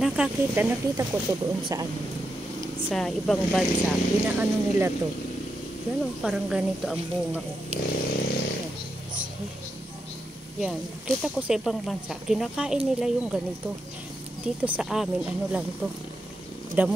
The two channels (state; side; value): normal; both; correlation 0.85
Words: ko to doon sa ibang bansa. Inaano nila to. Yan parang ganito ang bunga. Yan, kita ko sa ibang bansa. Kinakain nila yung ganito. Dito sa amin, lang to.